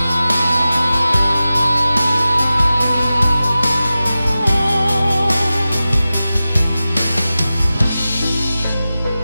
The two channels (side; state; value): both; inverted; correlation -0.95